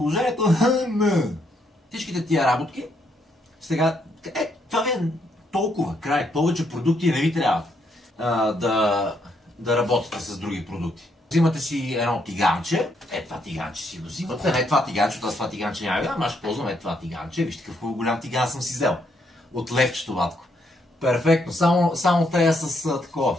Всичките тия работки. Сега, това ви е толкова край. Повече продукти не ви трябва да работите с други продукти. Взимате си едно тиганче. Това тиганче си го взимате. Не това тиганче, това тиганче няма да, аз ще ползвам това тиганче. Вижте какъв голям тиган съм си взел. От левчето, батко. Перфектно. Само трябва с такова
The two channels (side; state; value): both; normal; correlation 0.74